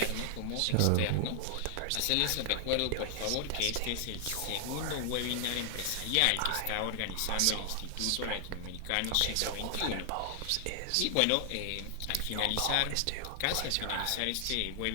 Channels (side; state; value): both; different; correlation 0.00